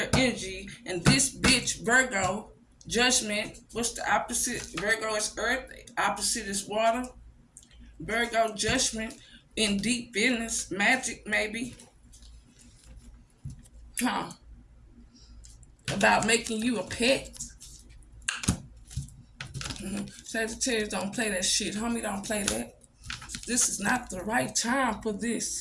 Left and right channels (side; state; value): both; identical; correlation 1.00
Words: energy. And this bitch, Virgo, judgment, what's the opposite? Virgo is earth, opposite is water. Virgo, judgment, in deep business, magic maybe. About making you a pet. Sagittarius don't play that shit. Homie don't play that. This is not the right time for